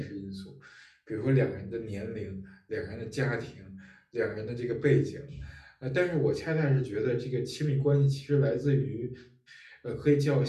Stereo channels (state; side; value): identical; both; correlation 1.00